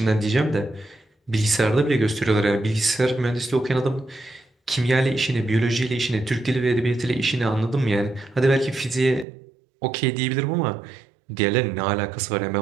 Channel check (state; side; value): drops out; left; at 9.2 s